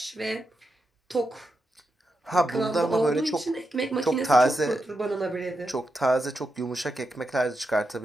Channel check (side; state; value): both; normal; correlation 0.86